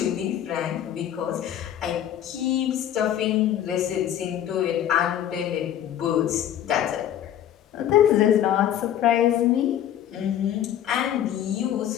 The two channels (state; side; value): quieter; right; 10.8 dB